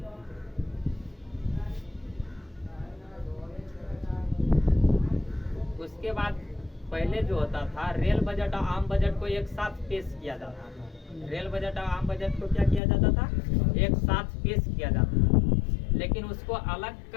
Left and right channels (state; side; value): drops out; right; at 12.8 s